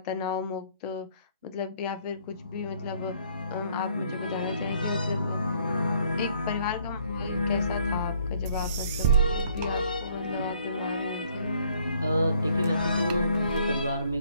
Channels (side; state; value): both; inverted; correlation -0.63